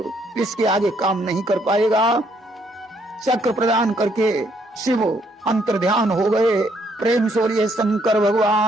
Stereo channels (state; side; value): normal; both; correlation 0.70